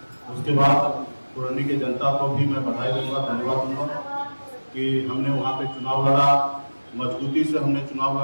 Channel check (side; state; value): both; inverted; correlation -1.00